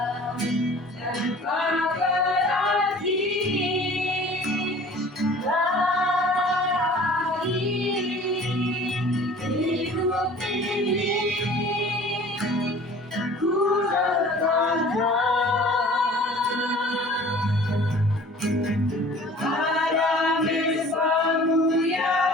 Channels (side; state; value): both; normal; correlation 0.47